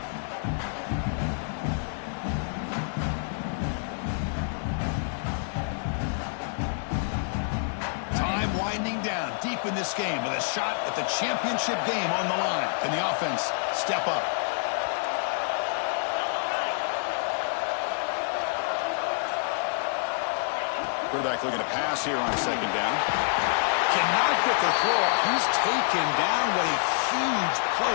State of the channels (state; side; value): silent; right; digital silence